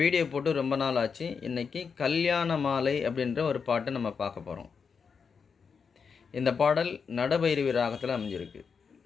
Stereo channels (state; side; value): quieter; right; 5.9 dB